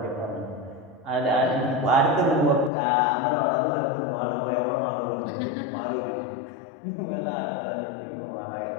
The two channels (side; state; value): right; drops out; at 2.7 s